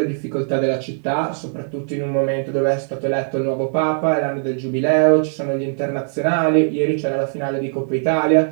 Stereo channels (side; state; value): left; silent; digital silence